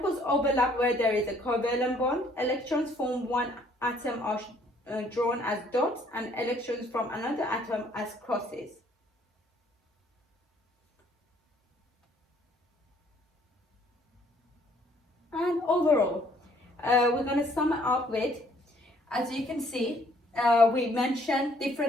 overlap where there is a covalent bond. Electrons from one atom are drawn as dots, and electrons from another atom as crosses. And overall, we're going to sum it up with, as you can see, we mentioned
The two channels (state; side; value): normal; both; correlation 0.62